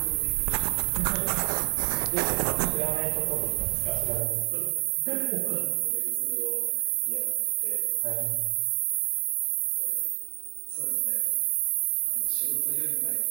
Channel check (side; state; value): left; silent; 59 dB below the other